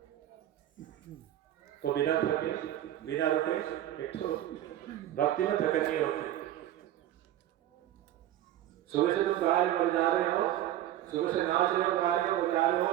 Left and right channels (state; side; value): quieter; left; 12.8 dB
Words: तो बिना थके, बिना रुके, एक तो भक्ति में थकन नहीं होती। सुबह से तुम गा रहे जा रहे हो, सुबह से नाच रहे हो, गा रहे हो, बजा रहे हो,